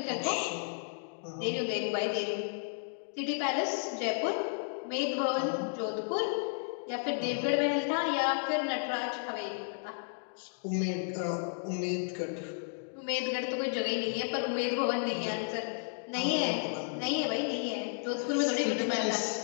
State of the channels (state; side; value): silent; right; digital silence